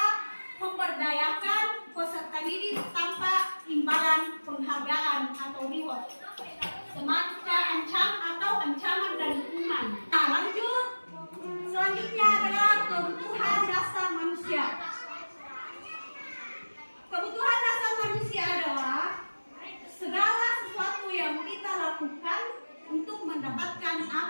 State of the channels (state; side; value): inverted; both; correlation -1.00